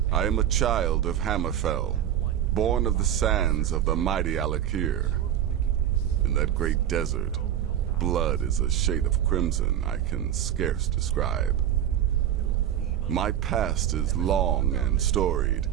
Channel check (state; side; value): quieter; left; 10.7 dB